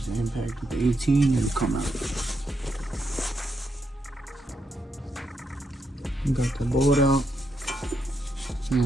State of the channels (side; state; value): both; normal; correlation 0.80